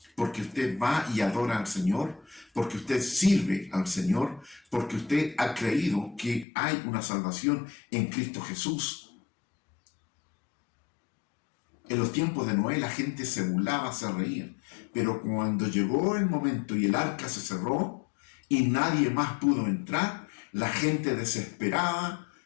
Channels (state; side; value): drops out; right; at 6.5 s